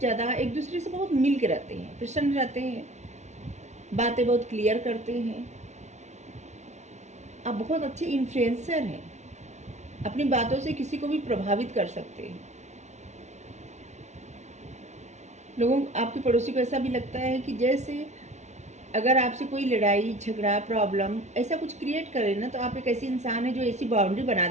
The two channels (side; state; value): left; late; 0.33 ms